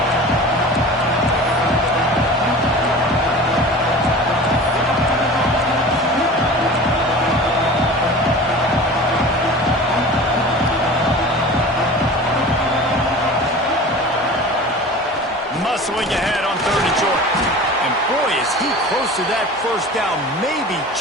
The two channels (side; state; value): both; normal; correlation 0.37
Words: Muscling ahead on 3rd and short. And boy, is he close to that first down, maybe